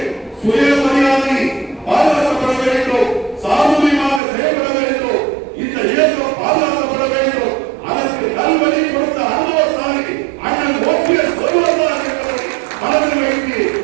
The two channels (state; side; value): drops out; left; at 4.2 s